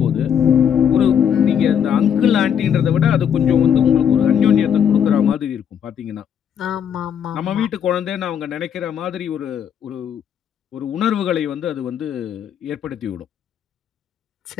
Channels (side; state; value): right; quieter; 8.4 dB